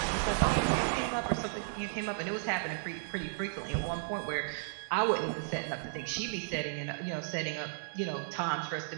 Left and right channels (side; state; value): left; silent; 55 dB below the other